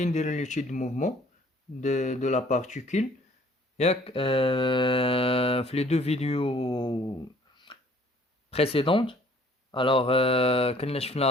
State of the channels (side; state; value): both; normal; correlation 0.56